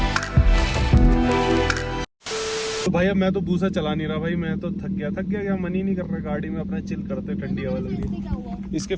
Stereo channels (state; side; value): identical; both; correlation 1.00